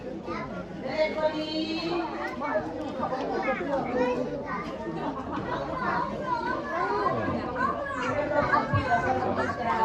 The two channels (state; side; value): identical; both; correlation 1.00